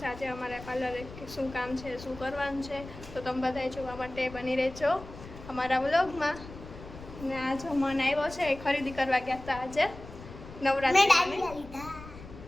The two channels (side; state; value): left; noise; rumble, 15 dB below the sound